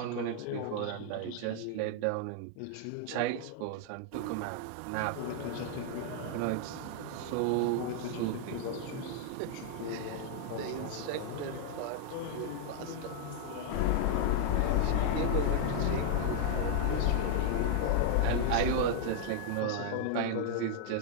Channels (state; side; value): different; both; correlation 0.00